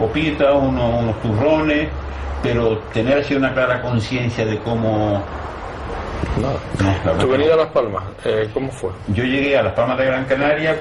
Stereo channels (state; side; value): identical; both; correlation 1.00